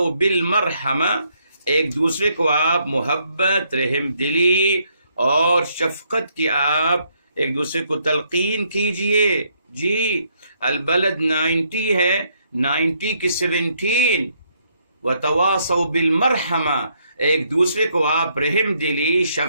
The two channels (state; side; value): inverted; both; correlation -0.72